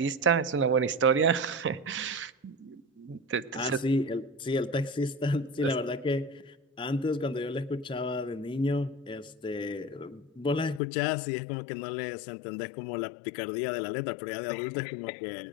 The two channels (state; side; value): drops out; right; at 10.8 s